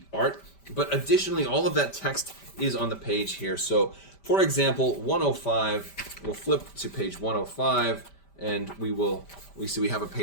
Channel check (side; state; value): right; late; 5.1 ms